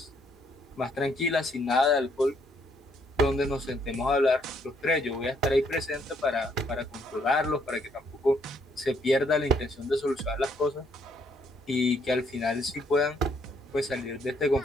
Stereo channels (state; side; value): normal; both; correlation 0.70